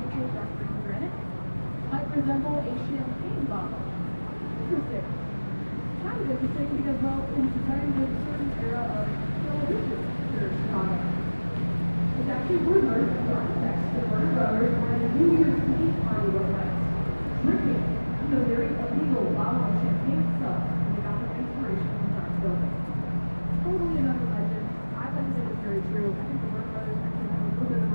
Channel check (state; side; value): inverted; both; correlation -1.00